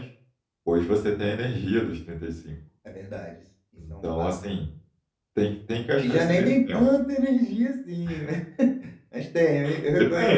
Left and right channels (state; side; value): identical; both; correlation 1.00